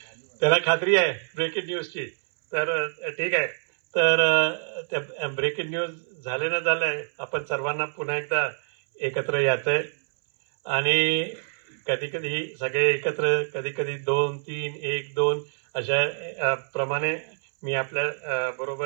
त्याला खात्री आहे ब्रेकिंग न्यूजची. तर ठीक आहे. तर त्या ब्रेकिंग न्यूज झाले ना झालंय आपण सर्वांना पुन्हा एकदा एकत्र यायचंय. आणि कधी कधी सगळे एकत्र, कधी कधी 2, 3, 1, 2 अशा प्रमाणे मी आपल्या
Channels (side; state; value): left; silent; 61 dB below the other